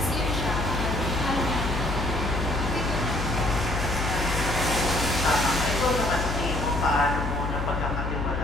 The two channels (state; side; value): noise; left; hum, 3 dB below the sound